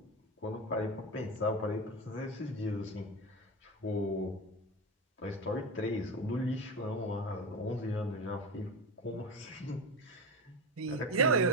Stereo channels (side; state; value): both; normal; correlation 0.21